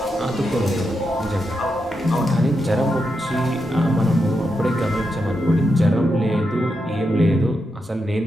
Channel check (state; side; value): normal; both; correlation 0.86